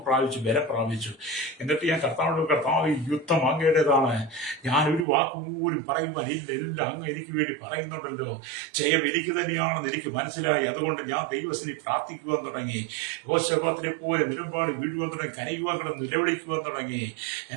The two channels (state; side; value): drops out; left; at 5.1 s